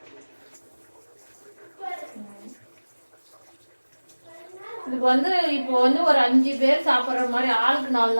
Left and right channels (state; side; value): inverted; both; correlation -1.00